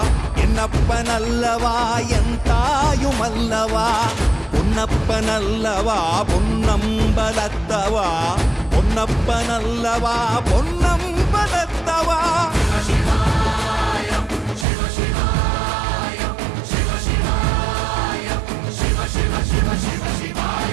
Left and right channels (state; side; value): drops out; left; at 14.7 s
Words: என்னப்பனல்லவா என் தாயும் அல்லவா பொன்னப்பனல்லவா பொன்னம்பலத்தவா பொன்னப்பனல்லவா பொன்னம்பலத்தவா